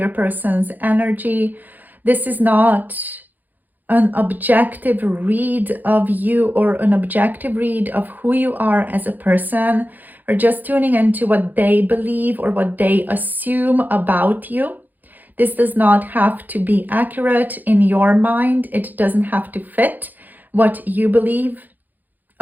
person's energy. This is not an objective read of you or an objective read of who you are as a person, or just tuning into what they believe or what they assume about you. This does not have to be accurate in your mind. It doesn't have to fit what you believe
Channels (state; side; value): late; left; 0.084 ms